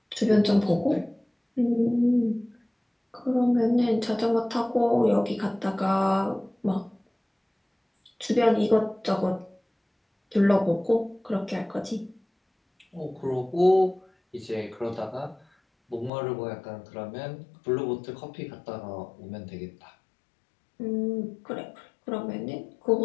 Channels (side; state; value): right; drops out; at 16.1 s